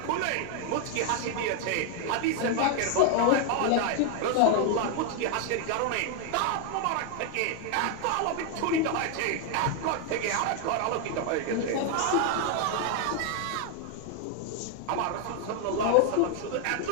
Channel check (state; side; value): different; both; correlation 0.00